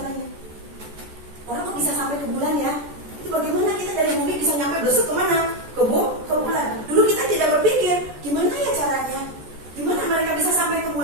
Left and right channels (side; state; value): left; late; 14 ms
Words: Orang kok bisa sampai ke bulan ya? Itu bagaimana kita dari bumi bisa nyampe besok kemana? Ke bulan. Dulu kita tidak berpikir gimana ya caranya? Gimana mereka bisa sampai ke